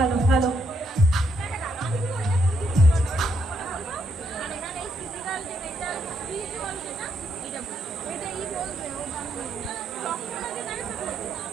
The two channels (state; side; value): normal; both; correlation 0.76